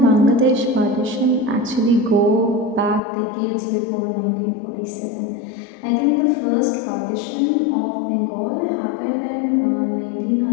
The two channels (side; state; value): right; drops out; at 3.0 s